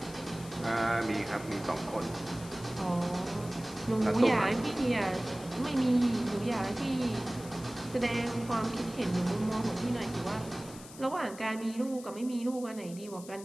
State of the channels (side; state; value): left; noise; hiss, 17 dB below the sound